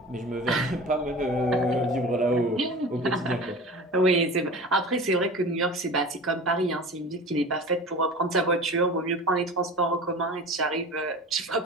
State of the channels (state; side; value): normal; both; correlation 0.36